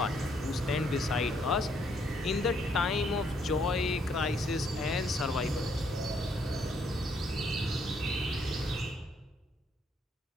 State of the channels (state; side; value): normal; both; correlation 0.70